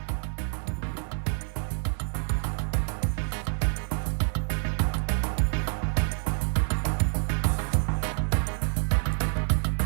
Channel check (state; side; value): silent; left; 57 dB below the other